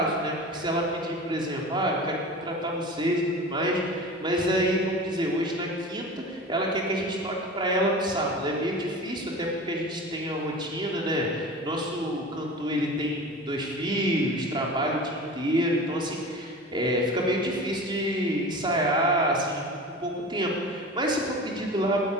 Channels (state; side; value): normal; both; correlation 0.34